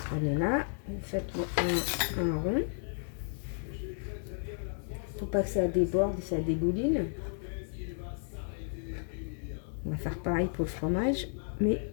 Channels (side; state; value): right; silent; digital silence